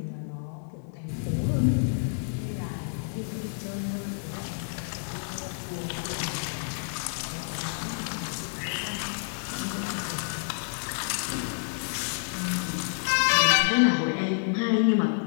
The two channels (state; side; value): silent; right; 59 dB below the other